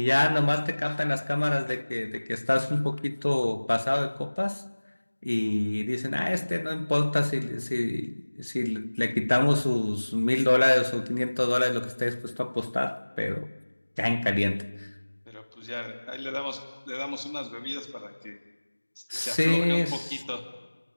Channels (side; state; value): both; inverted; correlation -1.00